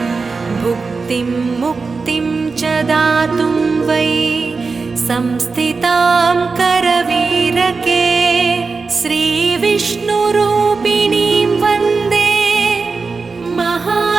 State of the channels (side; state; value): left; quieter; 4.4 dB